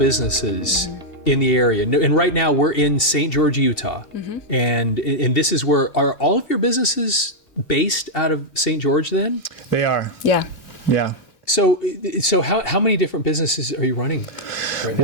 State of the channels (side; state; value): right; late; 2.7 ms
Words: in the area, and right now we're in St. George, Utah, and this is where, are all of your businesses based out of St. George then? They are. Yeah. Yeah. So how many different businesses are you running right